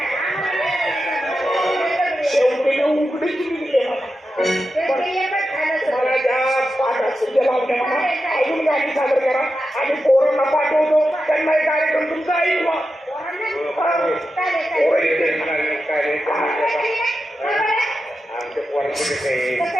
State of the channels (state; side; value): normal; both; correlation 0.90